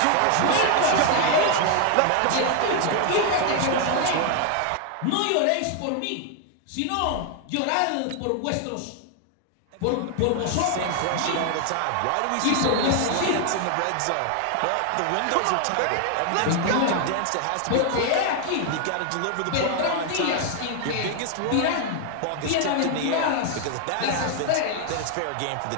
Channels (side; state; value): both; different; correlation 0.00